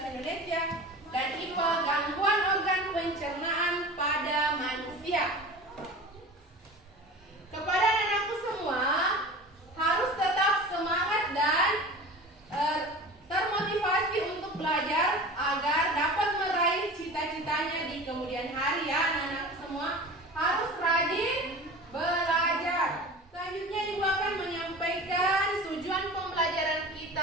Indonesia, dan IPA gangguan organ pencernaan pada manusia. Kepada anak-anakku semua, harus tetap semangat dan termotivasi untuk belajar agar dapat meraih cita-citanya di kemudian hari ya anak-anak semua. Harus rajin belajar. Selanjutnya Ibu akan menyampaikan tujuan pembelajaran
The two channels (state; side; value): normal; both; correlation 0.36